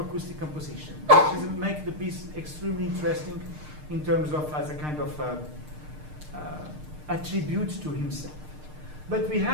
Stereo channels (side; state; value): left; late; 6.6 ms